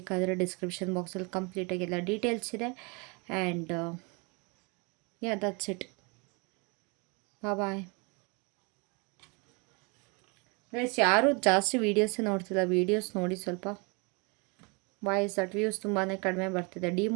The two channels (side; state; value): left; quieter; 31.2 dB